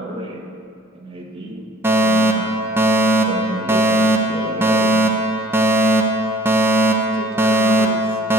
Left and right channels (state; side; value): normal; both; correlation 0.52